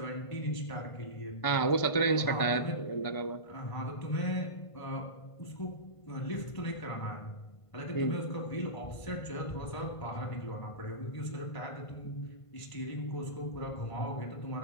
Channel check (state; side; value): late; right; 1.5 ms